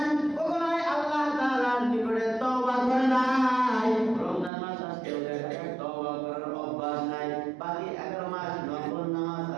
কখনোই আল্লাহ তাআলার নিকটে তওবা করে নাই, রমজান মাস আসলেও দেখা যায় তওবা করার অভ্যাস নাই। বাকি 11 মাস নফল নামাজ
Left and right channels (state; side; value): drops out; left; at 4.5 s